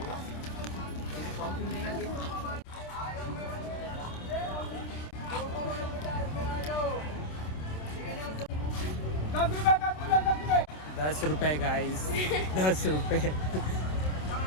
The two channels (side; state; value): right; late; 27 ms